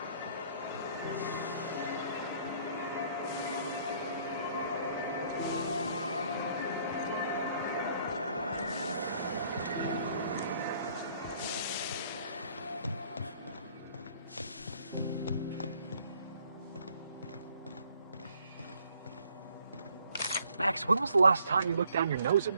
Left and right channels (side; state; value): both; inverted; correlation -0.62